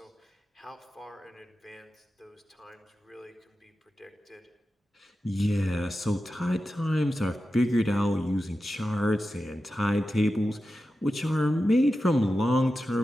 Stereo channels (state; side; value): normal; both; correlation 0.92